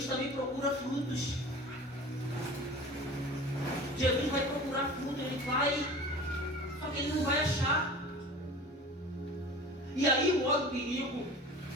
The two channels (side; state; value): both; normal; correlation 0.39